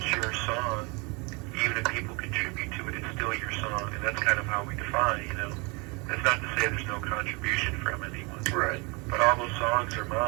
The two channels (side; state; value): left; quieter; 29.3 dB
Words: your song, even if people contribute to it, it's still your song, and that's kind of how we define, you know. That's not to say there's no contribution from anyone. Right. But all those songs are